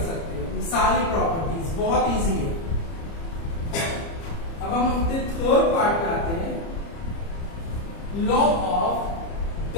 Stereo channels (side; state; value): right; late; 30 ms